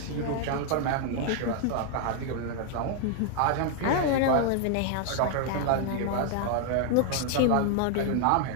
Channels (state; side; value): different; both; correlation 0.00